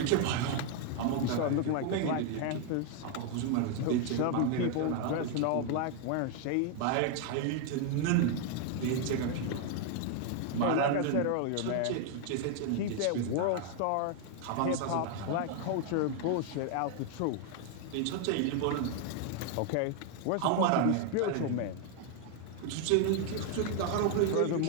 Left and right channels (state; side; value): different; both; correlation 0.00